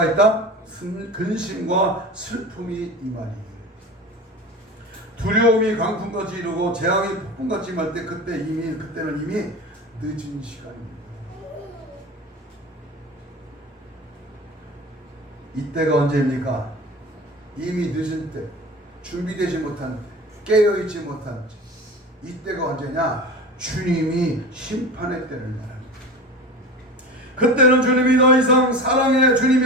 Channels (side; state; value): both; normal; correlation 0.32